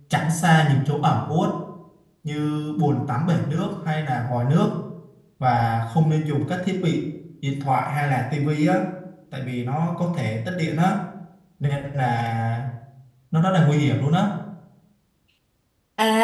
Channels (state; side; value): identical; both; correlation 1.00